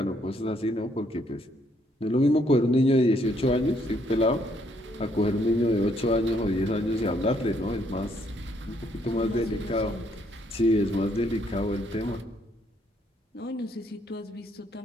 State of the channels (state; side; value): normal; both; correlation 0.70